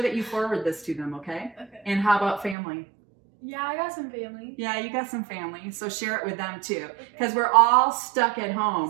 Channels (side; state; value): left; drops out; at 2.6 s